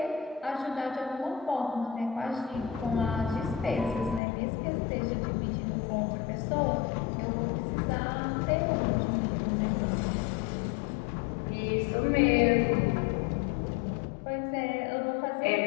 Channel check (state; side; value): drops out; right; at 4.2 s